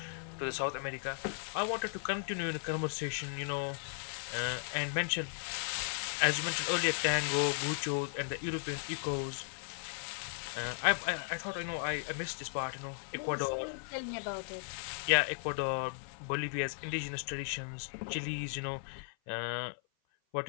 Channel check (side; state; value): right; silent; 54 dB below the other